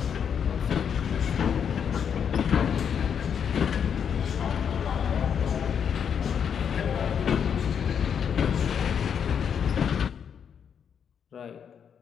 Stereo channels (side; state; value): right; quieter; 7.6 dB